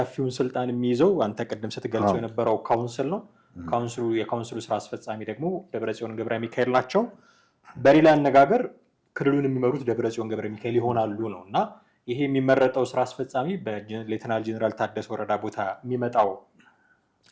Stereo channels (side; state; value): both; identical; correlation 1.00